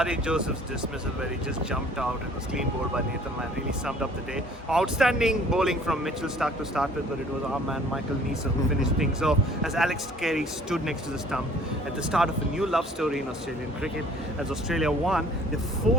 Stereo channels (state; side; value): normal; both; correlation 0.54